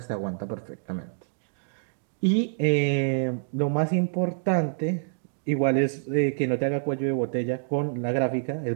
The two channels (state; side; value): silent; left; digital silence